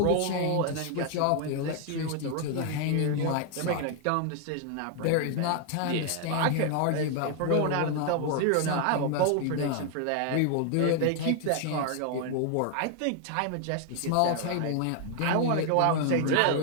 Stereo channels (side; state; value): both; different; correlation 0.00